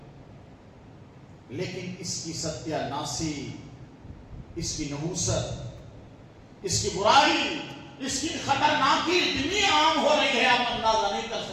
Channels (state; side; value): identical; both; correlation 1.00